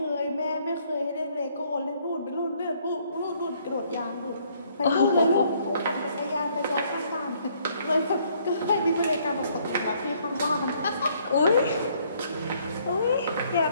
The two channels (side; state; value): both; inverted; correlation -0.65